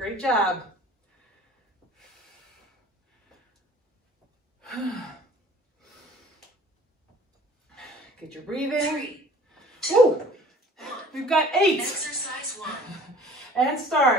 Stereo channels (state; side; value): normal; both; correlation 0.50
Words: job. Get your breathing. 3, 2, Ooh, 1. we've got 8. Exercise 1. And